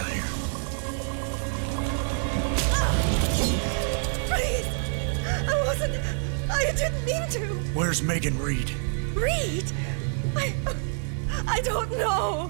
here. Please! I didn't mean to! Where's Megan Reed? Reed! I don't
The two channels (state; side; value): silent; left; 60 dB below the other